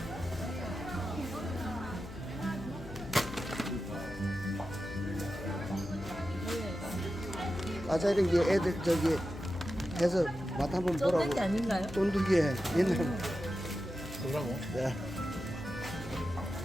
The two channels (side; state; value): left; noise; hum, 14 dB below the sound